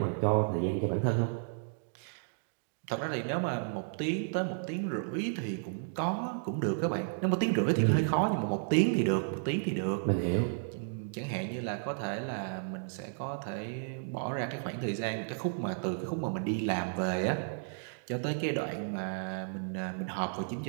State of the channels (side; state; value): left; silent; digital silence